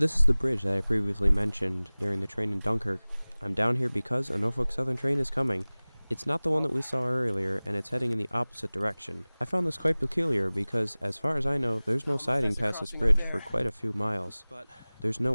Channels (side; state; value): both; inverted; correlation -1.00